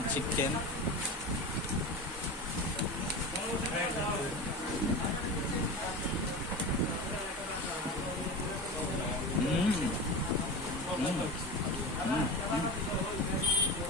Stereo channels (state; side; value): normal; both; correlation 0.28